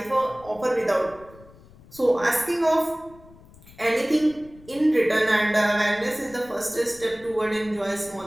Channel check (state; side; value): noise; left; rumble, 23 dB below the sound